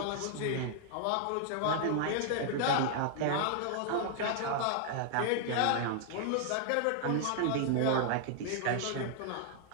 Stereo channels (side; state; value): both; different; correlation 0.00